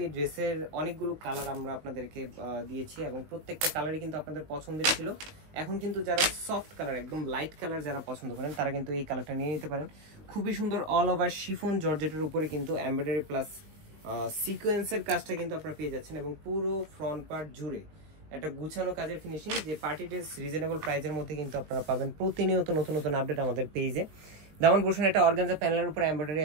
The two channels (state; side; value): late; left; 19 ms